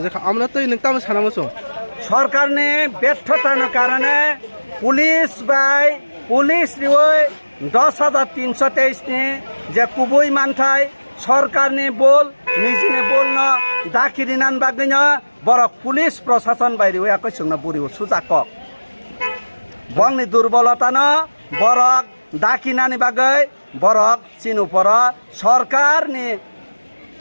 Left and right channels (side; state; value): both; inverted; correlation -1.00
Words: জাখা আমরা তৈ নংতাম সানামসং সরকারনি ব্যর্থতার কারণে পুলিশ রিওই 10,323 ni যে কুবই মানথাই সরকারনি বল নিজনে বলন দাকিরিনান বাগৈন বরক পুলিশ প্রশাসন বাইরে একই সঙ্গে বুড়ি সুজাকক বংনি দুর্বলতানো বরক দাকিনানি বাগৈ বরক চিনুপর সরকারনি